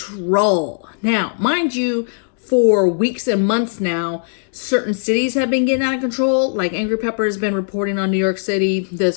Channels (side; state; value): right; silent; digital silence